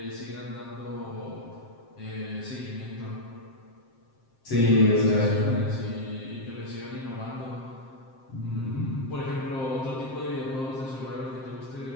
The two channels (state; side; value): late; right; 7.6 ms